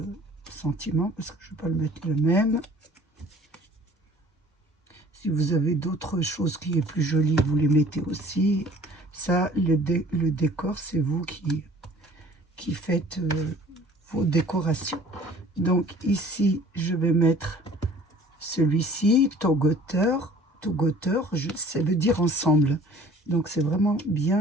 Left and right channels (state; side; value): normal; both; correlation 0.51